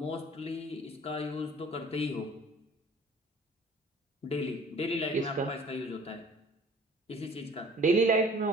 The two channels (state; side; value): normal; both; correlation 0.50